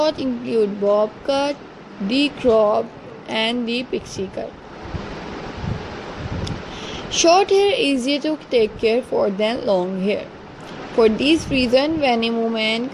include bob cut, the crop, and the pixie cut. Short hair is easier to take care for than long hair. For this reason, many women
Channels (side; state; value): both; identical; correlation 1.00